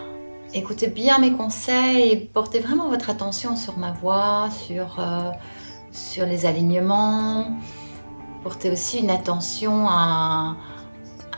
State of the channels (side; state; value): both; inverted; correlation -1.00